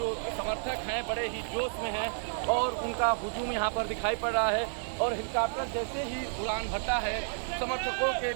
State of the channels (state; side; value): silent; left; digital silence